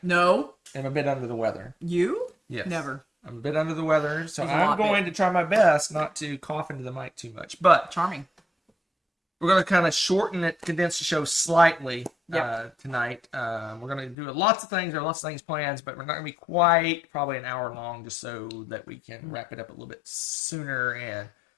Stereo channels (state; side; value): drops out; right; at 14.2 s